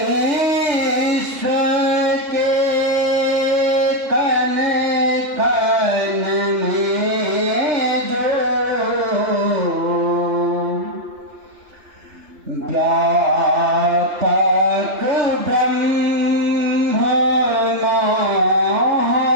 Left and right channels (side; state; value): left; late; 3.1 ms